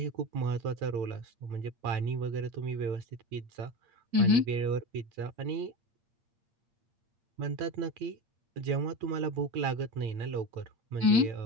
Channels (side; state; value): left; late; 8.6 ms